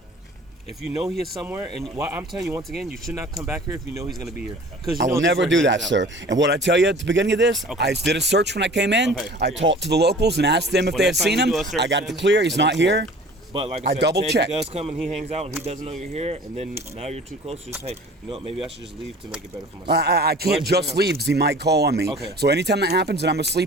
If you know he is somewhere, and I'm telling you once again, you should not come back here if you know he's going to be here. I will never do that, sir. And what I tell you at the beginning of this, okay. I did a search when I came in. Okay. I talked to the locals and asked them if they had seen him. I got it clear. He's not here. But like I double checked. If he does come and he hangs out and he doesn't know you're here, and then now you're too close, just hey, you know what, maybe I should just leave to make it better for myself. I can't just leave because he might call on me. Okay. So anytime that happens and I'm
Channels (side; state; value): both; normal; correlation 0.45